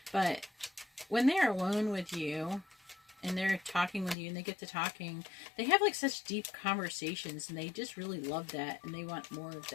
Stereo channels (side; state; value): right; drops out; at 4.2 s